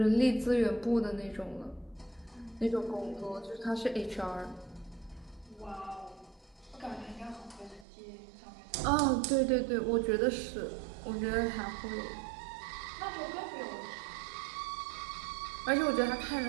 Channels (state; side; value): drops out; left; at 7.9 s